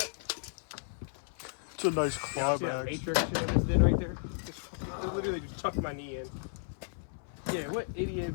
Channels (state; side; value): silent; right; 55 dB below the other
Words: It's a nice See that clawback. matrix shit I just did right there? Literally just tucked my knee in. Yeah, what idiot